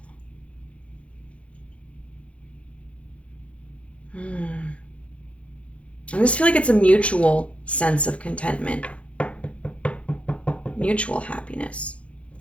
I just feel like it's a mutual sense of contentment, mutual happiness.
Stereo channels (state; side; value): late; right; 0.062 ms